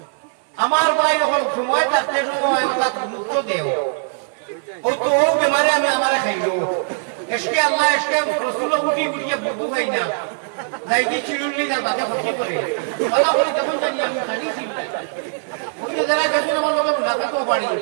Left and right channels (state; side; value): silent; left; digital silence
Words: আমার ভাই যখন সময় থাকতে সময় ওটা গুরুত্ব দেও ওই তো ও বেমারে আমি আমারে খাইলো এসকে আল্লাহ এসকে রসুল গুটি গুটিয়ে বুদ্ধু খাই না লাইটি চিড়ুল্লি তার বাদে ক্ষতি করে বলা বলি কেমন জানি আমি খালি চিল্লাই ওই যে যারা দেখুন আমার লোকে মুলাকাতও পারি